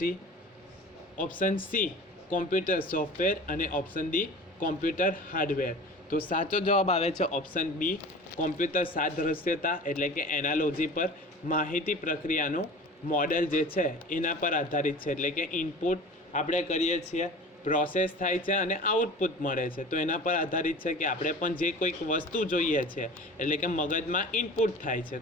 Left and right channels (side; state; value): both; normal; correlation 0.39